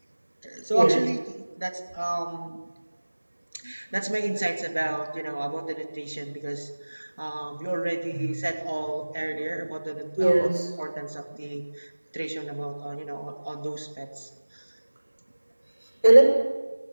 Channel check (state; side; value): inverted; both; correlation -1.00